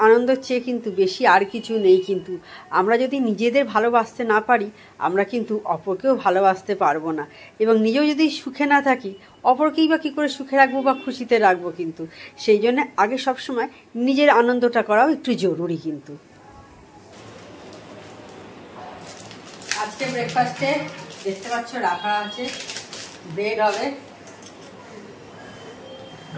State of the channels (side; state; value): both; identical; correlation 1.00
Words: আনন্দের চেয়ে কিন্তু বেশি আর কিছু নেই। কিন্তু আমরা যদি নিজেদের ভালোবাসতে না পারি, আমরা কিন্তু অপরকেও ভালোবাসতে পারবো না। এবং নিজেও যদি সুখে না থাকি, অপরকেই বা কী করে সুখে রাখবো বা খুশিতে রাখবো। কিন্তু সেই জন্য আগে সবসময় নিজের আনন্দটা করাও একটু জরুরি। কিন্তু আজকে ব্রেকফাস্টে দেখতে পাচ্ছ রাখা আছে, ব্রেড হবে।